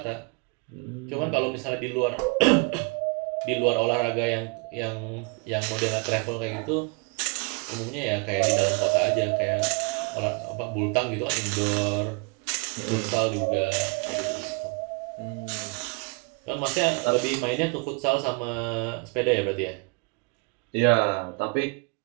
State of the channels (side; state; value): left; quieter; 31.1 dB